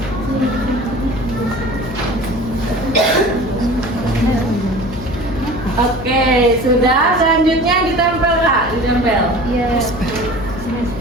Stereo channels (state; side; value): noise; left; hum, 10 dB below the sound